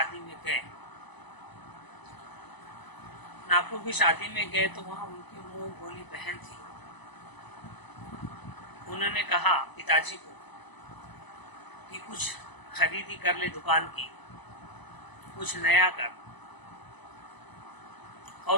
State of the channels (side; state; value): right; late; 1.0 ms